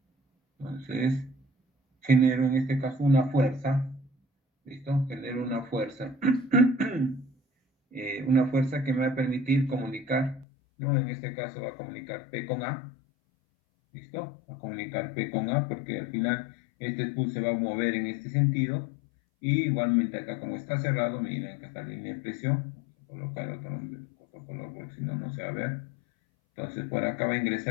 Entonces, genero en este caso una fuerza, ¿listo? Genero una fuerza que me va a permitir comunicar, ¿no? En este caso va a comunicar P con A, ¿listo? Va a comunicar P con A porque al final este spool se va a mover en este sentido y igualmente acá como está cerrado, miren que está la línea de presión, vamos a colocar otro color porque si no, no se va a ver. Entonces por acá va a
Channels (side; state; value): right; drops out; at 10.5 s